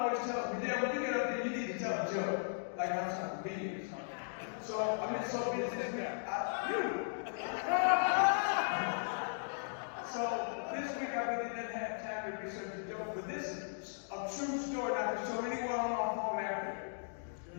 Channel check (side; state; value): right; silent; digital silence